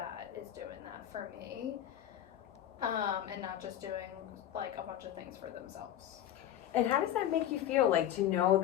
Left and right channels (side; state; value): right; quieter; 11.4 dB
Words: is doing that for me, and not just doing like a bunch of things for themselves. And how does that make you feel, like to know